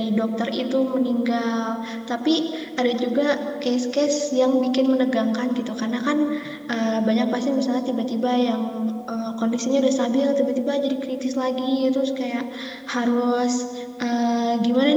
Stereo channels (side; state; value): both; identical; correlation 1.00